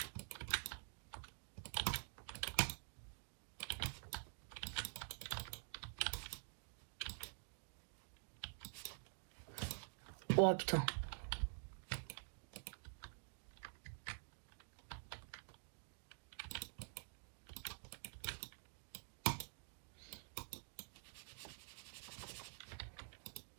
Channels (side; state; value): left; silent; digital silence